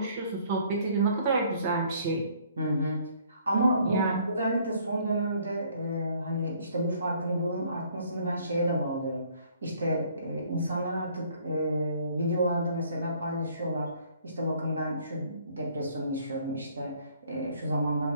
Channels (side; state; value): both; inverted; correlation -0.60